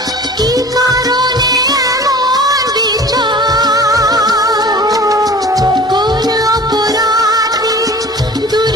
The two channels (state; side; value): normal; both; correlation 0.42